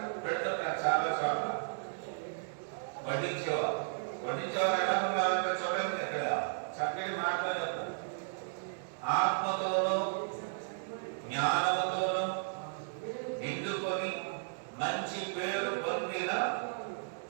పెడుతుంటారు. చాలా చోట్ల వడ్డించేవారు ఎలా ఉన్నారంటే చూడండి, అక్కడ చక్కటి మాటలు చెప్తారు. ఆత్మతోనూ జ్ఞానముతోనూ నిండుకొని మంచి పేరు పొందిన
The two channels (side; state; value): left; silent; digital silence